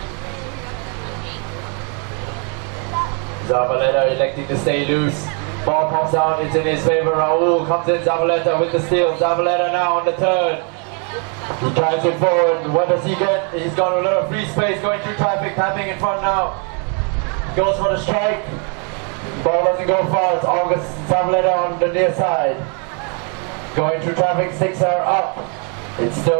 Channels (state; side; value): quieter; left; 38.0 dB